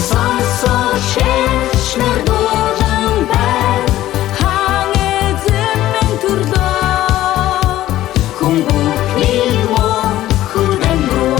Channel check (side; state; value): right; quieter; 14.3 dB